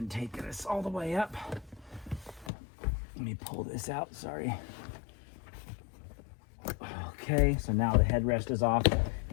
take this all the way up. Let me pull this out, sorry. Okay, so now the headrest is off,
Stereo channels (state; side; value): drops out; right; at 2.5 s